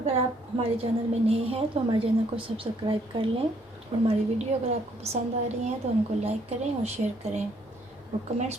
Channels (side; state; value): both; normal; correlation 0.67